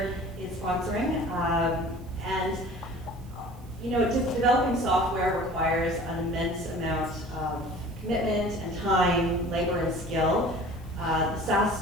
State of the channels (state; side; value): noise; right; hiss, 28 dB below the sound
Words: is sponsoring. And you know, just developing software requires an immense amount of commitment and time, labor and skill. The SaaS